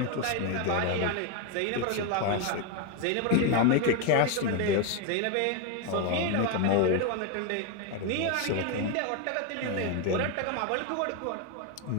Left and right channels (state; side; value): different; both; correlation 0.02